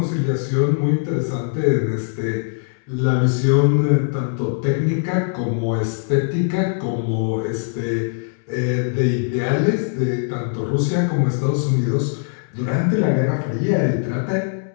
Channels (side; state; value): right; silent; 65 dB below the other